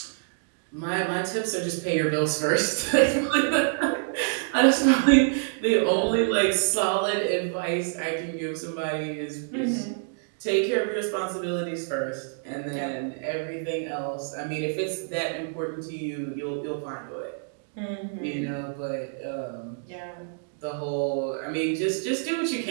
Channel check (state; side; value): silent; left; digital silence